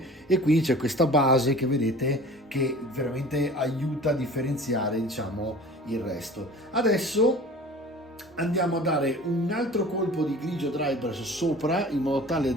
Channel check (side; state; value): both; normal; correlation 0.43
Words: e quindi c'è questa base che vedete che veramente aiuta a differenziare, diciamo, il resto. Adesso andiamo a dare un altro colpo di grigio dry brush sopra, in modo tale